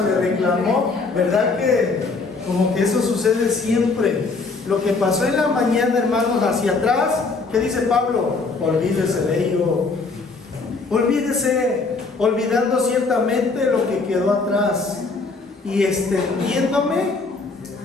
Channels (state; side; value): quieter; right; 4.0 dB